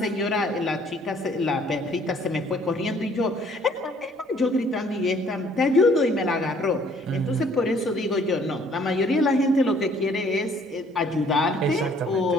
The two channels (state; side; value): normal; both; correlation 0.60